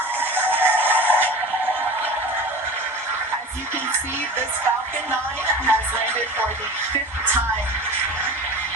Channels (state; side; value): normal; both; correlation 0.34